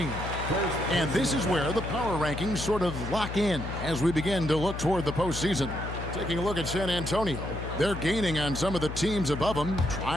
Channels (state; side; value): noise; left; hum, 7 dB below the sound